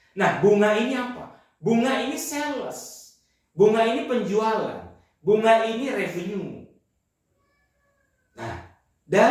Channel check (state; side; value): identical; both; correlation 1.00